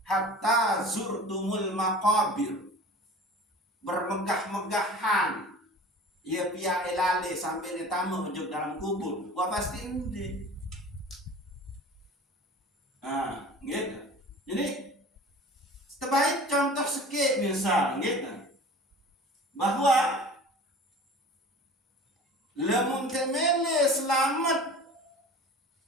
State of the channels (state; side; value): normal; both; correlation 0.40